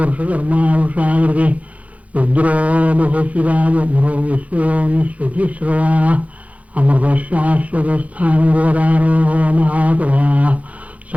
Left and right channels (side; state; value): left; late; 0.067 ms